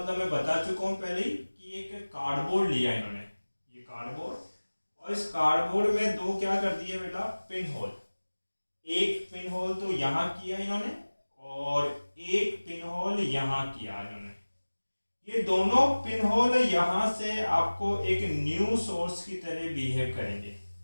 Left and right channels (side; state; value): both; inverted; correlation -1.00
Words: मैं बता चुका हूँ पहले ही कि एक कार्डबोर्ड लिया इन्होंने, ये कार्डबोर्ड, और इस कार्डबोर्ड में दो क्या कर दिए बेटा, पिन होल। एक पिन होल तो यहाँ किया इन्होंने और एक पिन होल यहाँ किया इन्होंने। ये दोनों पिन होल यहाँ से आपको एक न्यू सोर्स की तरह बिहेव करेंगे।